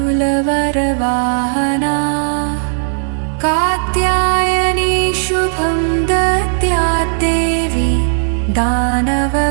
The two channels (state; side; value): silent; left; digital silence